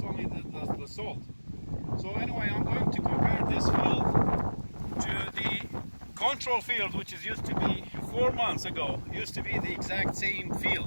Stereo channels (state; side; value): inverted; both; correlation -1.00